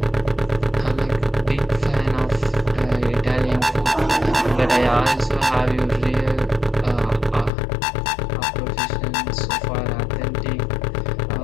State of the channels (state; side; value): drops out; right; at 7.5 s